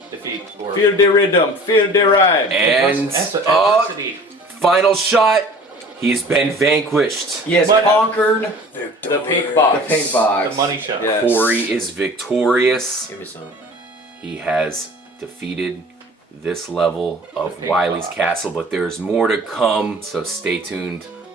defeat. Or Feel the rhythm, feel the rhyme. And adversity. final shot. He's been vanquished. He has But- conquered The pink box. the pink box. The money shot. Yeah. Cory is victorious. Give me some. He has defeated this level of pink Wiley's box. Castle, but there's more to come, so stay tuned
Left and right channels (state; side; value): normal; both; correlation 0.45